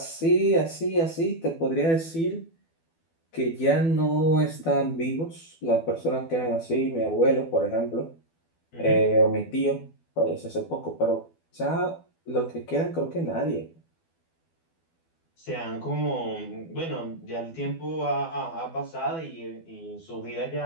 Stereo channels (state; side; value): late; right; 12 ms